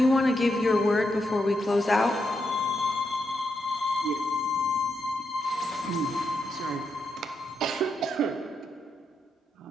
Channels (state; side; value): normal; both; correlation 0.83